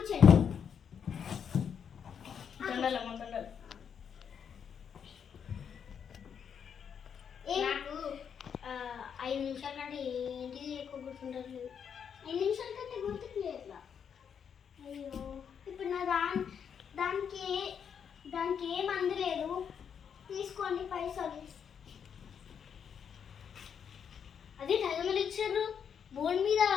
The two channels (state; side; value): quieter; right; 7.6 dB